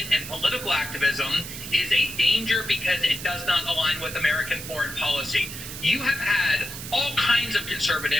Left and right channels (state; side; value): noise; right; hiss, 10 dB below the sound